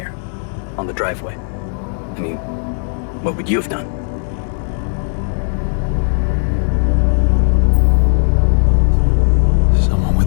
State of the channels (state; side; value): silent; right; digital silence